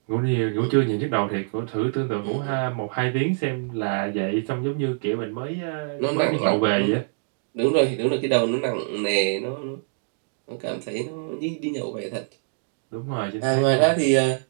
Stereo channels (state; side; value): silent; left; digital silence